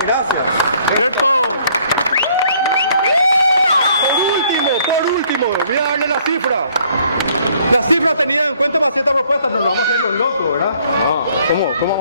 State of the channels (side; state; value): both; inverted; correlation -0.63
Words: gracias. ¿Cierto? Por último, voy a darle la cifra. La cifra tenida en cuenta para hacer esta propuesta, no nos vamos a hacer los locos, ¿verdad? ¿Cómo